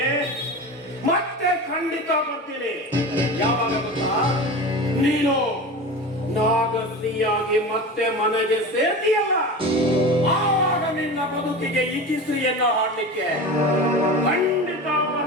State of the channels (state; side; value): normal; both; correlation 0.30